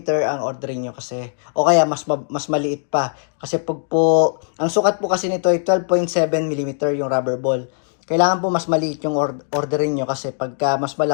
ang orderin niyo kasi. O kaya, mas maliit pa. Kasi ang sukat po kasi nito ay 12.7mm yung rubber ball. Kailangan po mas maliit yung orderin nyo kasi pagka mas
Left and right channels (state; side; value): silent; right; digital silence